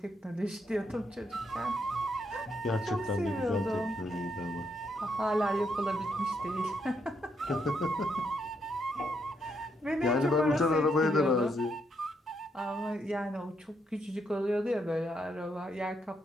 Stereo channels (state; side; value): normal; both; correlation 0.77